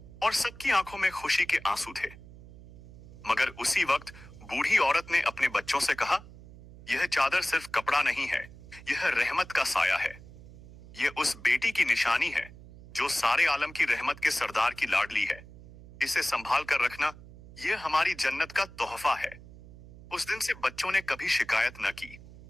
और सबकी आंखों में खुशी के आंसू थे। मगर उसी वक्त बूढ़ी औरत ने अपने बच्चों से कहा, यह चादर सिर्फ कपड़ा नहीं है, यह रहमत का साया है। यह उस बेटी की निशानी है जो सारे आलम की रहमत के सरदार की लाडली है। इसे संभाल कर रखना, यह हमारी जन्नत का तोहफा है। उस दिन से बच्चों ने कभी शिकायत न की।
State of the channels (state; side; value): noise; right; hum, 19 dB below the sound